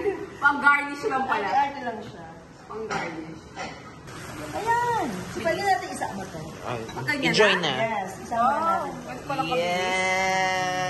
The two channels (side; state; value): both; identical; correlation 1.00